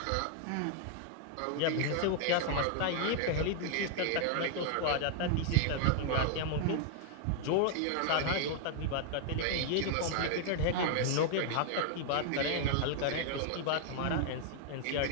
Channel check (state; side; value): different; both; correlation 0.00